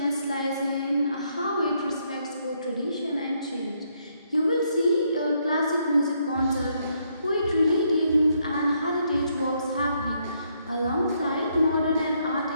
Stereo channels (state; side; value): inverted; both; correlation -0.74